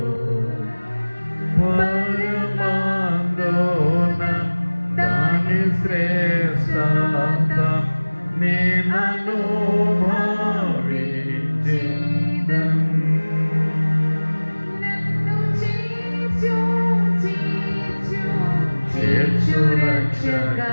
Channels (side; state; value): both; inverted; correlation -1.00